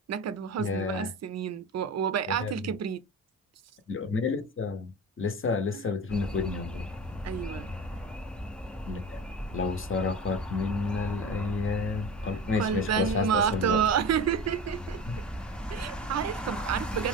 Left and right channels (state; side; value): normal; both; correlation 0.31